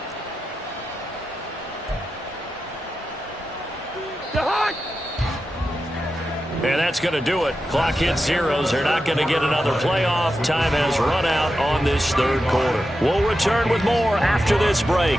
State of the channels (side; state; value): both; normal; correlation 0.90